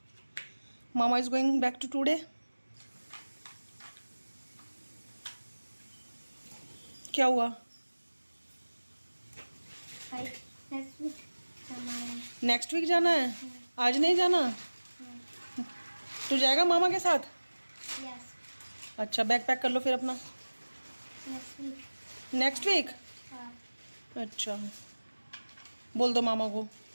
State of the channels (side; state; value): both; inverted; correlation -1.00